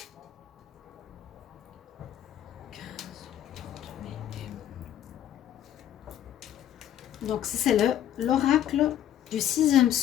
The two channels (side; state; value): right; quieter; 11.1 dB